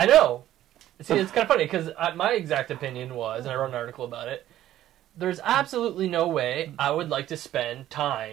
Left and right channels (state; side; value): quieter; left; 13.0 dB